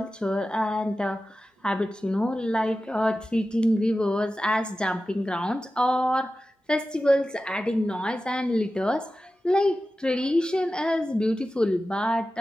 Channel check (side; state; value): both; normal; correlation 0.94